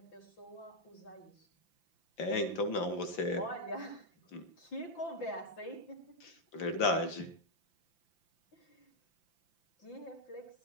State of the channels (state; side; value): late; right; 5.9 ms